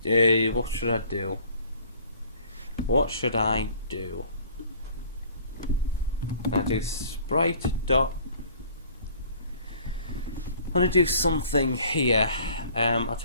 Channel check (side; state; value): both; inverted; correlation -0.53